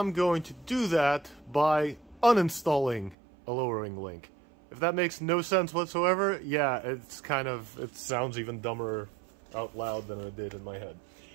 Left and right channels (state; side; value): drops out; left; at 3.2 s